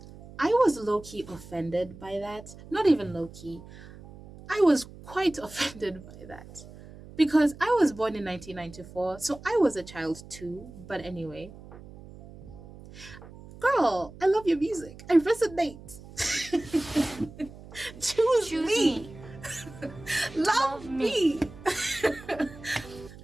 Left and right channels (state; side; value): noise; right; hum, 17 dB below the sound